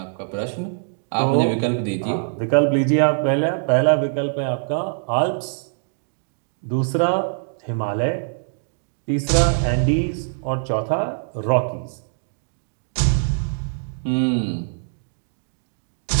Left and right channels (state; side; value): silent; left; digital silence